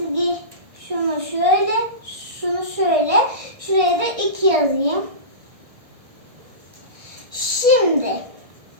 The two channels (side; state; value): left; late; 1.7 ms